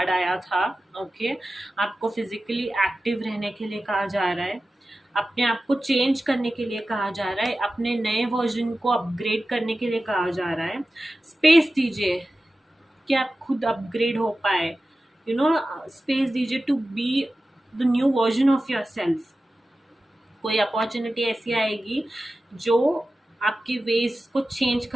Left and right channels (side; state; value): both; normal; correlation 0.94